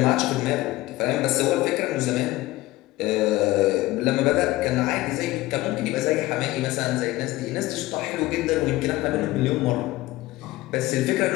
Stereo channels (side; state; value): right; quieter; 18.2 dB